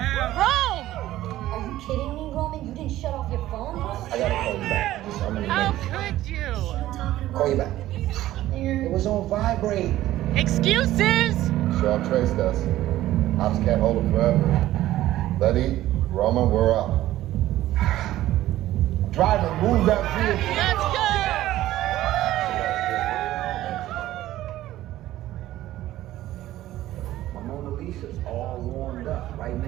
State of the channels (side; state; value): left; quieter; 14.7 dB